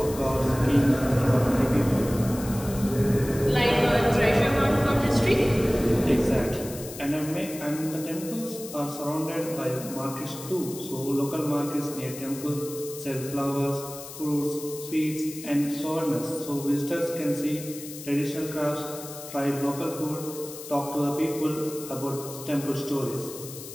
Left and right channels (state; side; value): noise; left; hiss, 13 dB below the sound